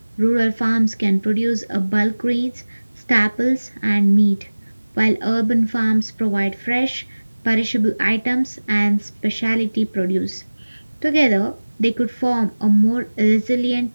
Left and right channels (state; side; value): inverted; both; correlation -1.00